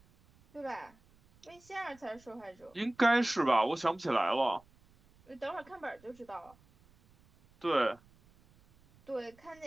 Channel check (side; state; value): right; noise; rumble, 29 dB below the sound